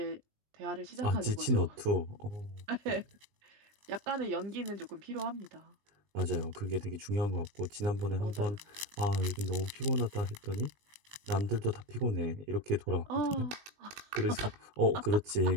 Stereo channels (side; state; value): left; late; 20 ms